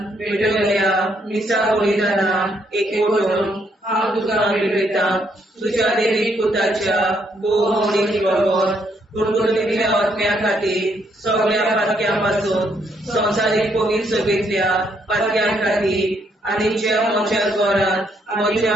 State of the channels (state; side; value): normal; both; correlation 0.73